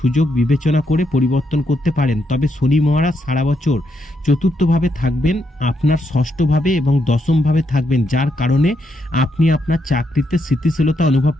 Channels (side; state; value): both; normal; correlation 0.79